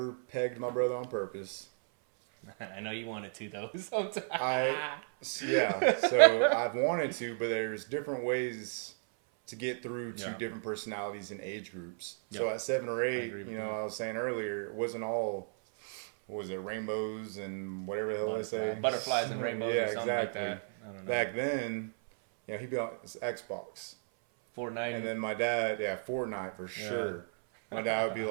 pegged my brother on purpose. I know you wanted to though. Sometimes. So I've wanted to, but there's different ways to get through to different personalities and age groups. So at 7 or 8, I was saying earlier, it wasn't all, what was it, rainbows and whatever the hell they say? Butterflies and rainbows. Yeah, exactly. Like back then, he'd be on his Xbox. Fortnite. And then my dad, Fortnite for sure. My dad would be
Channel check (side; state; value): left; silent; 55 dB below the other